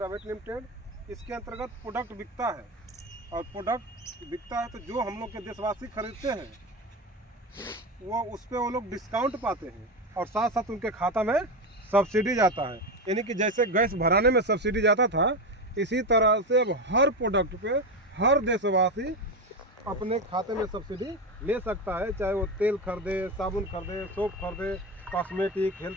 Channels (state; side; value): normal; both; correlation 0.16